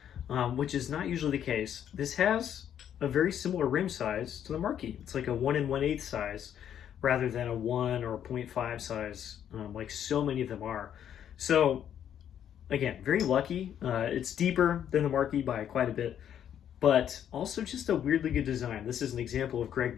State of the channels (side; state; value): right; quieter; 9.7 dB